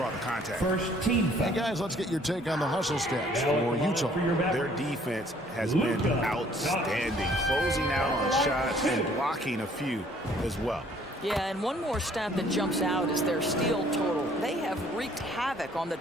the contact. First team foul. Hey, guys, let's get your take on the hustle stats for Utah. Their defense has been outstanding, closing out on shots and blocking a few as well. Yeah, and one more stat that jumps out is their steal total. They have wreaked havoc on the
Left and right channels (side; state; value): both; normal; correlation 0.59